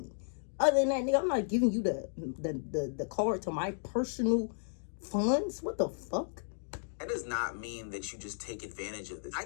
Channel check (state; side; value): silent; right; digital silence